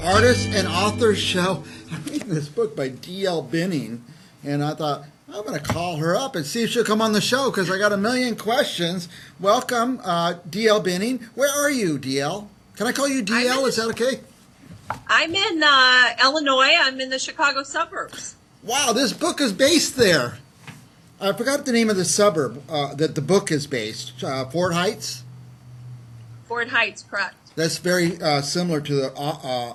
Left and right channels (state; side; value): identical; both; correlation 1.00